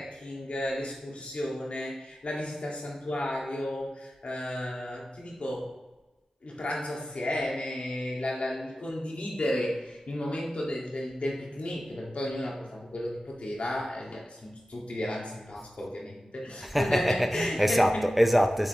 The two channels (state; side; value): normal; both; correlation 0.94